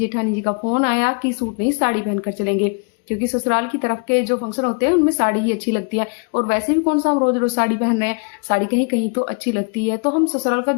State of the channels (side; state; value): right; quieter; 35.0 dB